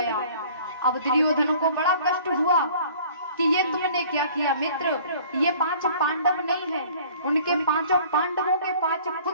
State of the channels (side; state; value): both; inverted; correlation -0.51